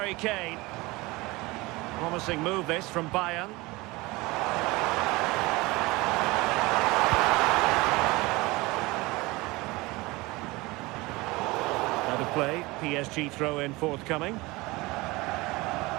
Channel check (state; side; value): quieter; left; 22.2 dB